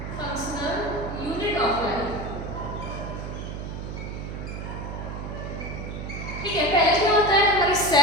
फंक्शनल यूनिट ऑफ लाइफ, ठीक है। पहले क्या होता है, हमारे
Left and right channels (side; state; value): right; noise; hum, 7 dB below the sound